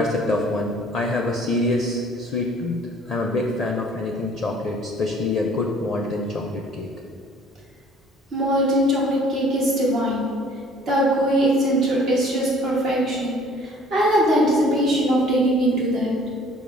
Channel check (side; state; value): both; normal; correlation 0.54